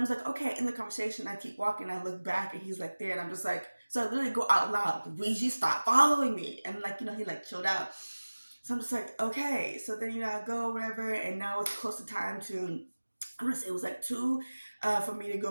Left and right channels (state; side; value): inverted; both; correlation -1.00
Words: just like, okay, in the conversation, I keep walking, I look back, and he's like there, and I'm just like, so I literally go out loud, Luigi, stop following me. And like, he like chilled out. So I'm just like, okay. So then, I go, whatever, and now it's close to time to, I'm gonna say it was like 2 for me to